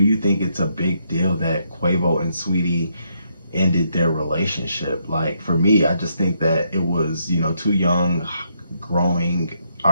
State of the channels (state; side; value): inverted; both; correlation -0.76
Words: think it's a big deal that Quavo and Saweetie ended their relationship? Like, for me, I just think that it was, two young growing